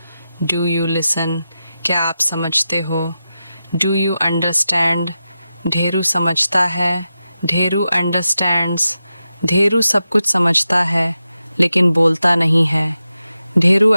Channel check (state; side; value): inverted; both; correlation -0.91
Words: Do you listen. क्या आप समझते हो? Do you understand. ढेरू समझता है, ढेरू अंडरस्टैंड्स। ढेरू सब कुछ समझता है लेकिन बोलता नहीं है। Dheru